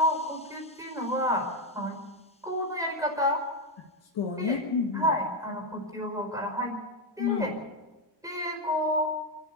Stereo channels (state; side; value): normal; both; correlation 0.06